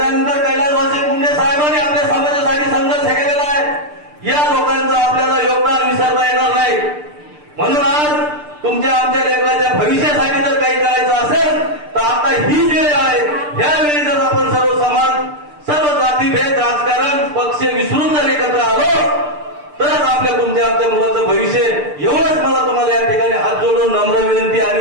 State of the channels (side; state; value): left; late; 6.7 ms